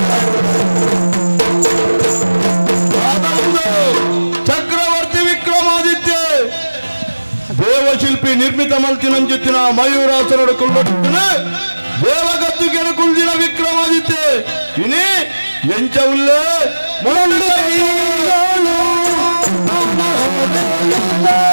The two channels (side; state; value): both; inverted; correlation -1.00